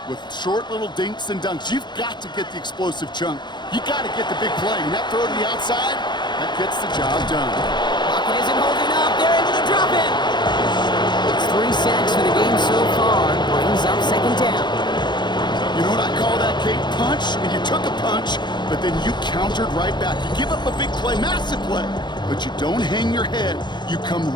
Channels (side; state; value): right; late; 0.21 ms